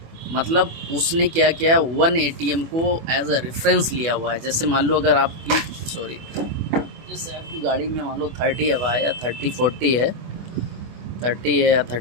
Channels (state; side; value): late; left; 25 ms